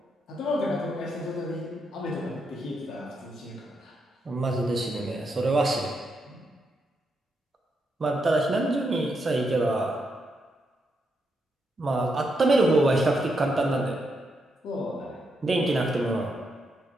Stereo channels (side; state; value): both; normal; correlation 0.81